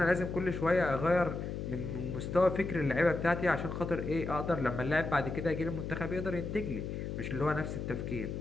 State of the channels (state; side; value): noise; left; hum, 5 dB below the sound